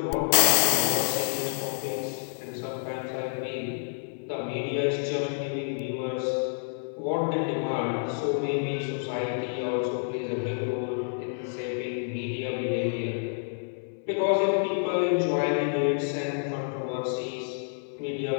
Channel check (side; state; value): right; silent; 59 dB below the other